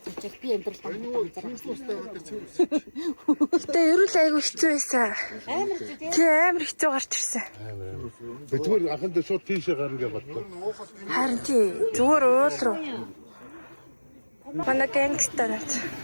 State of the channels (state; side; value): inverted; both; correlation -1.00